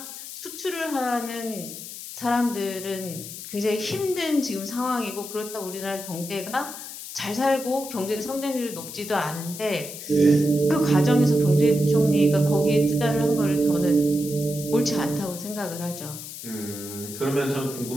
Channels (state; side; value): noise; left; hiss, 11 dB below the sound